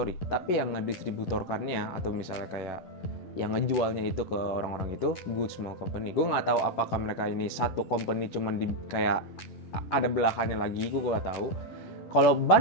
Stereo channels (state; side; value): late; right; 11 ms